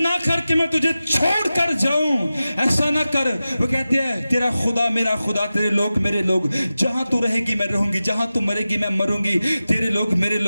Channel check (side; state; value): both; inverted; correlation -0.94